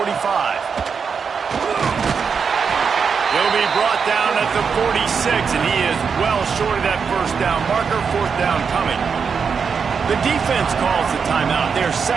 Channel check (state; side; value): quieter; left; 6.0 dB